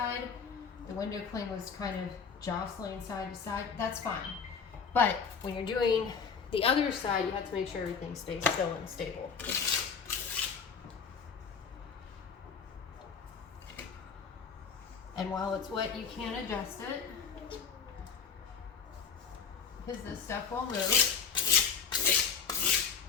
the window cling was kind of jostling side to side. That's fine. But when you're doing the other side, you have to make sure everything stays still and stable. And while it's wet, you can adjust it, because this stuff will move.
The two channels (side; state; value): right; quieter; 6.2 dB